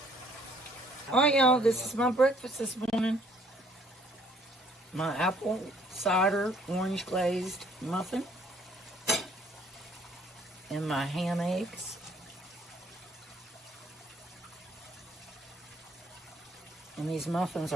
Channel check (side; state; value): both; normal; correlation 0.62